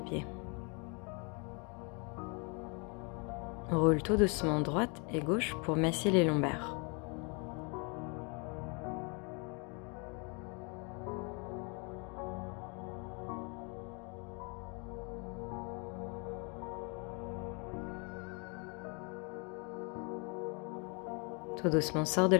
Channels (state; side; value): quieter; right; 33.8 dB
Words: pieds. Roule tout doucement droite et gauche pour masser les lombaires. Tout doucement, sors de